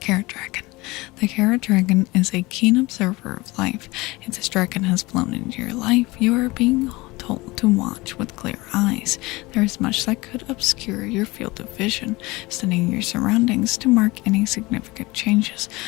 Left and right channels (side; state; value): right; quieter; 22.1 dB